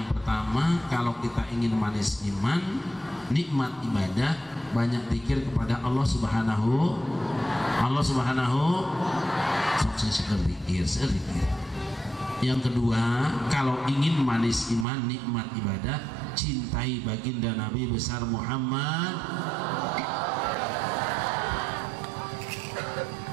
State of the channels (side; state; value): left; drops out; at 14.9 s